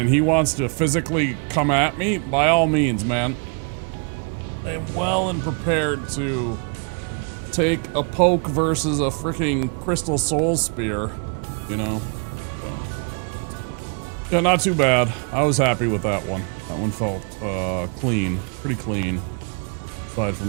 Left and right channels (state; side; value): quieter; left; 38.5 dB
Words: he wants to physically come at me, by all means, man. I am well and prepared to take a poke versus a freaking crystal soul spear, you know? So. Yeah, not too bad. I was happy with that one. That one felt clean, pretty clean, aside